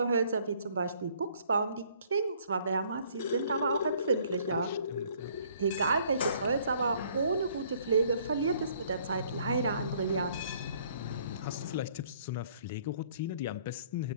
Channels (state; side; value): inverted; both; correlation -0.61